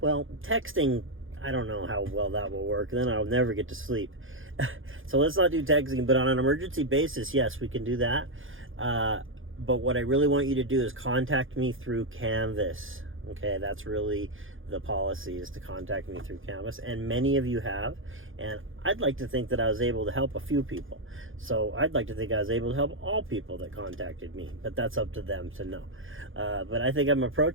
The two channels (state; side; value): late; left; 0.58 ms